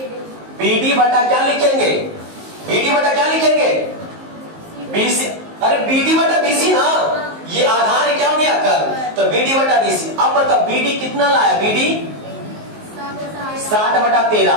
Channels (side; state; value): left; late; 19 ms